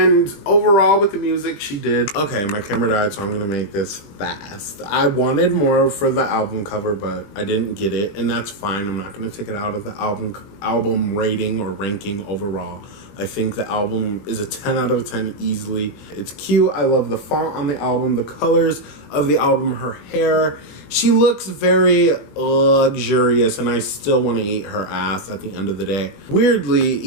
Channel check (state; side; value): late; right; 20 ms